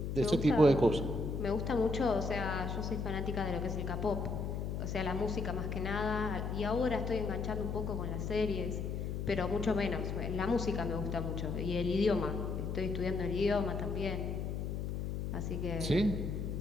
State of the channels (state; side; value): noise; left; hum, 2 dB below the sound